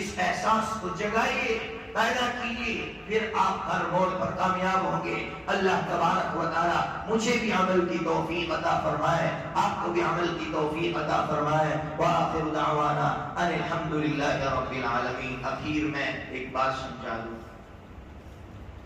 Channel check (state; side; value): identical; both; correlation 1.00